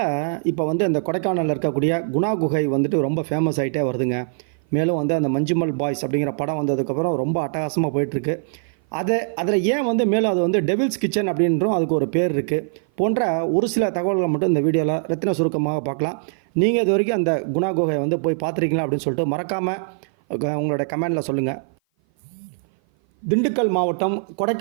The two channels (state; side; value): silent; left; 56 dB below the other